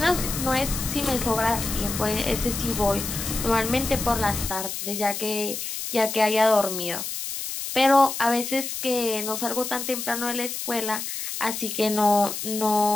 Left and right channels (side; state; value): left; noise; hiss, 5 dB below the sound